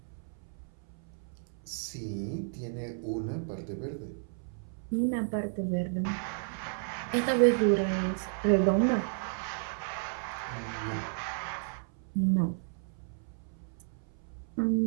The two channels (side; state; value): left; silent; 56 dB below the other